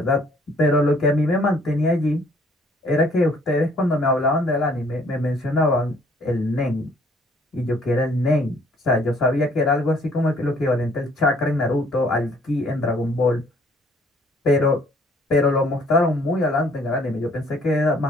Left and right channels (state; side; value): normal; both; correlation 0.61